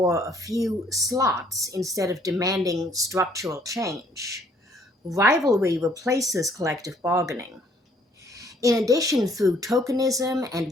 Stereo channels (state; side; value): normal; both; correlation 0.63